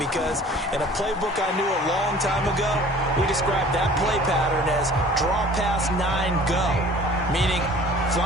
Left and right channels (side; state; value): both; normal; correlation 0.48